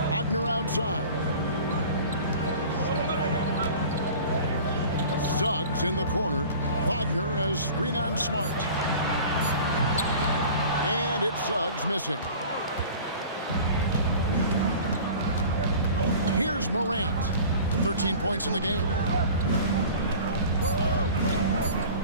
Wagner outside. Suggs in the corner. Wagner has screen on Smart. And it's Suggs missing. Here's Morant. 13 points in the game.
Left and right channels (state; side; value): inverted; both; correlation -0.42